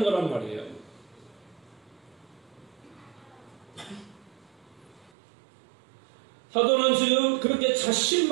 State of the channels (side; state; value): left; drops out; at 5.1 s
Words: 거란 말이에요. 사도는 지금 그렇게